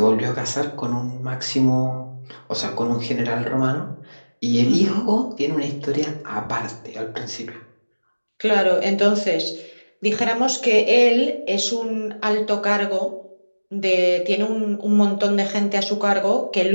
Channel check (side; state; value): both; inverted; correlation -1.00